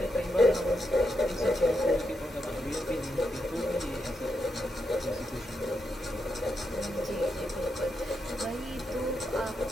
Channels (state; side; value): normal; both; correlation 0.83